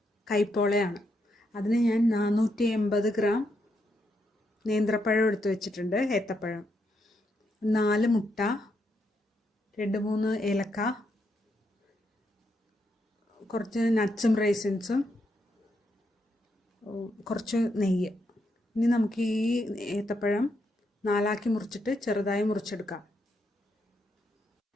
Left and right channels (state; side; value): normal; both; correlation 0.79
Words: കൈപ്പോളയാണ്. അതിന് ഞാൻ 480 ഗ്രാം നേന്ത്രപ്പഴം എടുത്ത് വെച്ചിട്ടുണ്ട്, ഏത്തപ്പഴം, 4 മുട്ട, 2-3 ഏലക്ക, കുറച്ച് നട്ട്സും റൈസിൻസും, കുറച്ച് നെയ്യ്. ഇനി നമുക്ക് ഈ ഏത്തപ്പഴം 4ആക്കി മുറിച്ചിട്ട് ചെറുതായി മുറിച്ചെടുക്കാം.